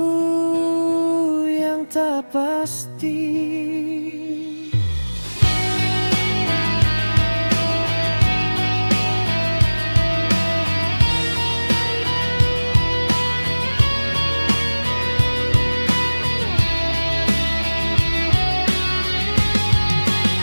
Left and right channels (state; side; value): inverted; both; correlation -1.00